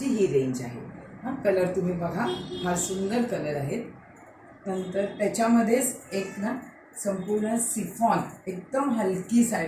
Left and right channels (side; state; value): both; identical; correlation 1.00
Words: ही रेंज आहे। कलर तुम्ही बघा, फार सुंदर कलर आहेत। नंतर त्याच्यामध्येच एक ना संपूर्ण सिफॉन एकदम हलकी